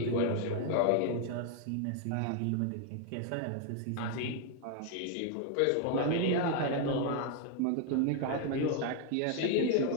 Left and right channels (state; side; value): different; both; correlation 0.00